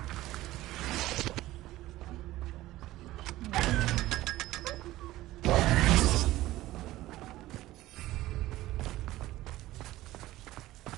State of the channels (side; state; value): left; quieter; 16.3 dB